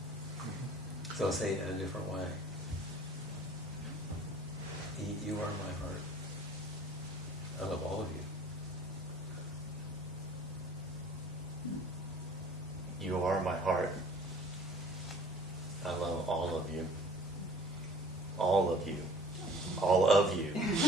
So I'll say it in a different way. You are my heart. I love all of you. You are my heart. I love all of you. All of you. All of you.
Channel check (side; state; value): both; normal; correlation 0.51